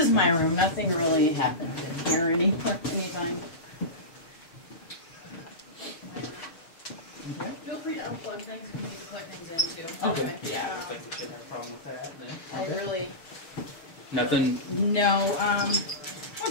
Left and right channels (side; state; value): right; late; 6.2 ms